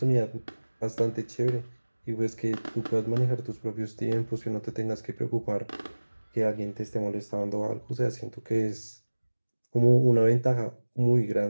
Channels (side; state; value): both; inverted; correlation -1.00